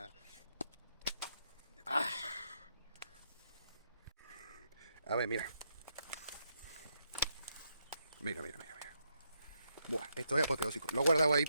A ver, mira. Mira, mira, mira, mira. Buah, esto es apoteósico. Lo he guardado ahí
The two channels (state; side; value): inverted; both; correlation -0.79